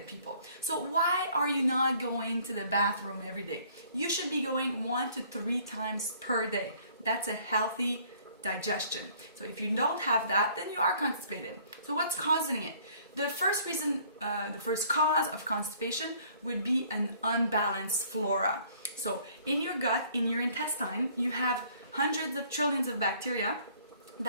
people. So why are you not going to the bathroom every day? You should be going 1 to 3 times per day. That's a healthy digestion. So if you don't have that, then you are constipated. So what's causing it? The first reason, the first cause of constipation would be an unbalanced flora. So in your gut, in your intestine, you have hundreds of trillions of bacteria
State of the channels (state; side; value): inverted; both; correlation -0.58